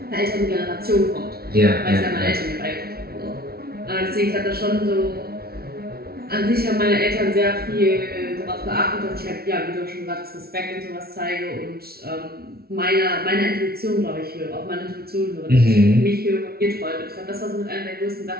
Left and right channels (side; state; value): left; late; 0.44 ms